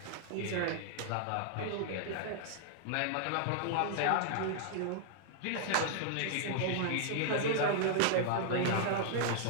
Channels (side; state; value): both; different; correlation -0.01